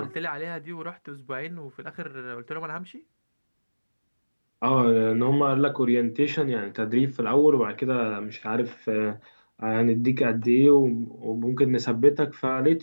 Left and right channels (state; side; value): inverted; both; correlation -1.00